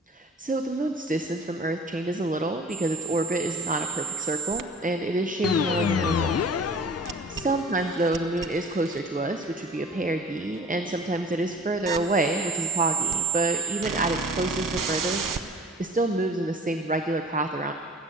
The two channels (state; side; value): normal; both; correlation 0.42